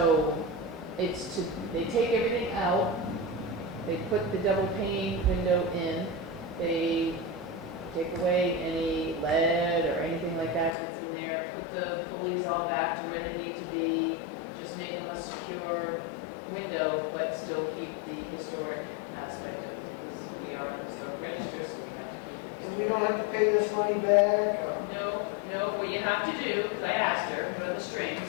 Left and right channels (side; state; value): right; drops out; at 10.8 s